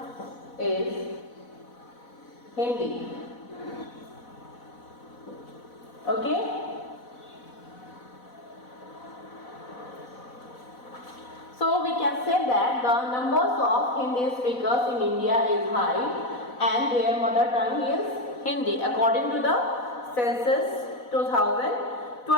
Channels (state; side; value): late; right; 4.1 ms